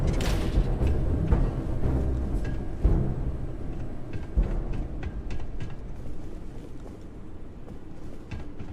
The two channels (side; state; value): both; identical; correlation 1.00